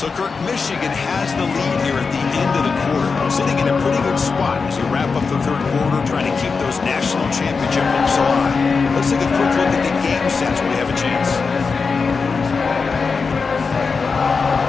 Kirk, Michigan has the lead here at the end of the quarter. Sitting in a pretty good spot as you wrap up the third quarter, trying to keep those national championship hopes alive. Let's take a quick look at the game sense when we have a chance.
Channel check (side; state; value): right; quieter; 4.9 dB